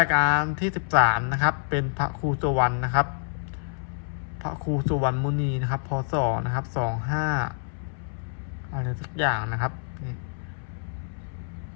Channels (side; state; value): right; silent; 60 dB below the other